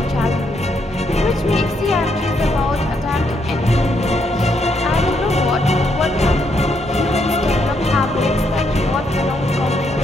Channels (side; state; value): both; normal; correlation 0.75